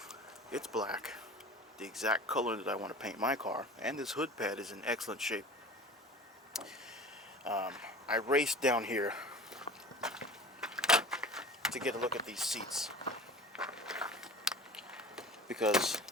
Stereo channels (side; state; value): both; normal; correlation 0.38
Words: It's black. The exact color that I want to paint my car. And this hood pad is in excellent shape. I raced down here to get a look at these seats, because